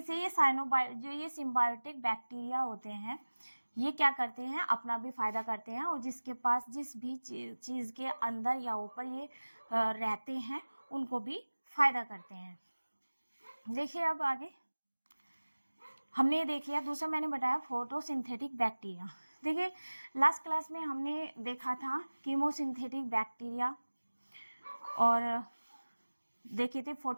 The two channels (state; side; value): inverted; both; correlation -1.00